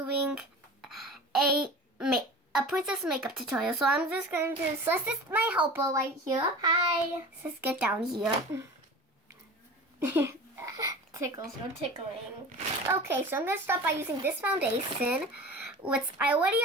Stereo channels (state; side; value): normal; both; correlation 0.36